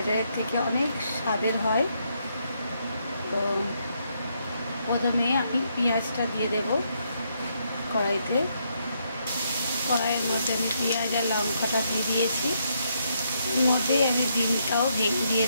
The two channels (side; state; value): both; inverted; correlation -0.76